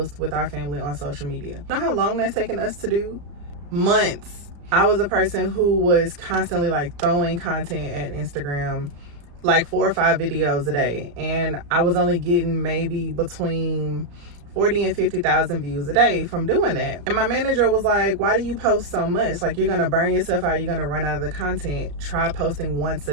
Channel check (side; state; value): left; late; 34 ms